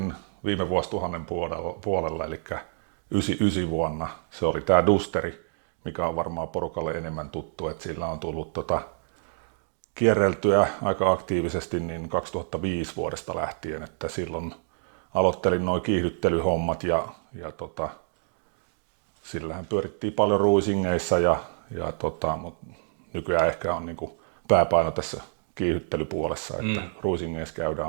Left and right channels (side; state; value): left; silent; digital silence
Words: viime vuosituhannen puolella, eli 99 vuonna. Se oli tää Dusteri, mikä on varmaan porukalle enemmän tuttu, että sillä on tullut kierreltyä aika aktiivisesti niin 2005 vuodesta lähtien, että silloin aloittelin nuo kiihdyttelyhommat ja sillähän pyörittiin paljon ruisingeissa mutta nykyään ehkä on niinku pääpaino tässä kiihdyttelypuolessa, että ruisingeissa